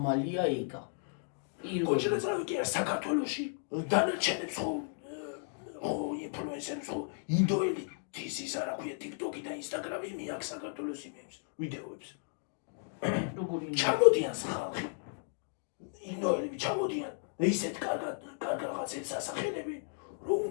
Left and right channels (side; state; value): right; silent; digital silence